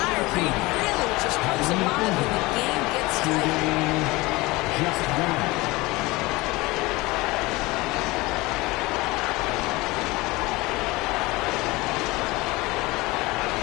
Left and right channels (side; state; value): right; quieter; 21.9 dB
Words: really just comes alive when the game gets tight. Just one.